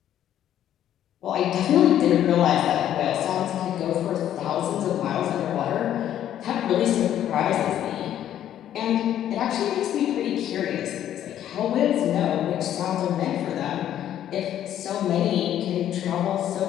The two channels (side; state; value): right; quieter; 11.1 dB